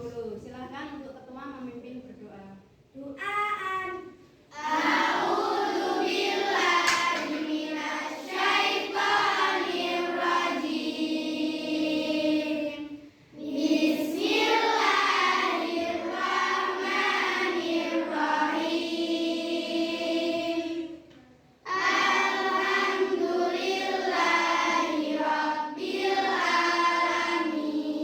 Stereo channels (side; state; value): both; identical; correlation 1.00